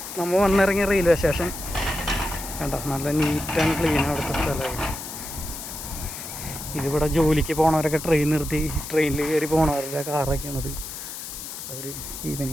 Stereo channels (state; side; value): noise; left; hiss, 9 dB below the sound